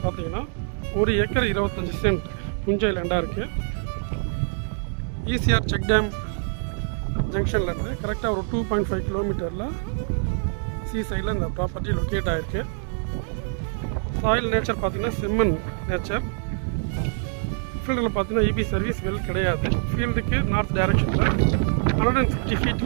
பார்த்தீங்கன்னா 1 ஏக்கர் 25 சென்ட் புஞ்சை லேண்டாக இருக்குது. ஈசிஆர் செக் டேம் ஜங்ஷன்லேருந்து கரெக்டாக ஒரு 2.5 கிலோமீட்டரில் சி சைடில் இந்த ப்ராப்பர்ட்டி லொக்கேட் ஆகிருக்கு. சாயில் நேச்சர் பார்த்தீங்கன்னா செம்மண் நேச்சர். ஃபீல்டில் பார்த்தீங்கன்னா இபி சர்வீஸ் வெல் கிடையாது. ஃபீல்டுக்கு நார்த் டைரக்ஷனில் 150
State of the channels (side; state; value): left; silent; 59 dB below the other